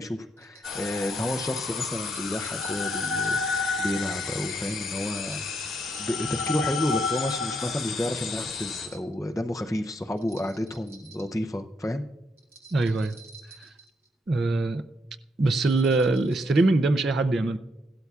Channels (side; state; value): both; normal; correlation 0.76